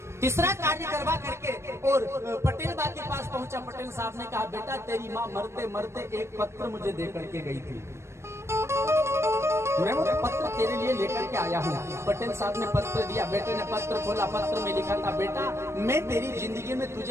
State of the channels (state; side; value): late; left; 0.13 ms